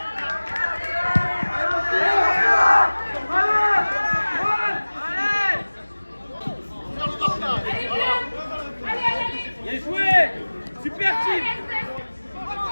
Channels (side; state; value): both; inverted; correlation -1.00